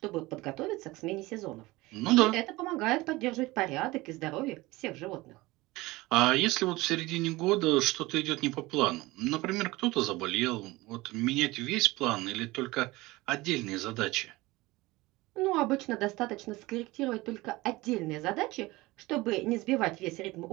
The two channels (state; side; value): quieter; left; 20.6 dB